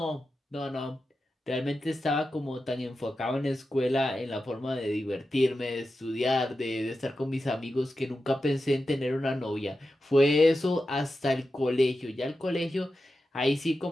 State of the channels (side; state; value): both; normal; correlation 0.91